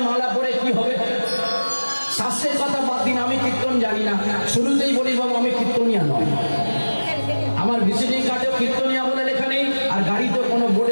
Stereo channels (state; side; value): inverted; both; correlation -1.00